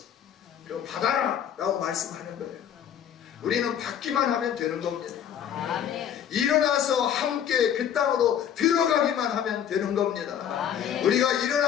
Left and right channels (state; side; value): quieter; right; 9.2 dB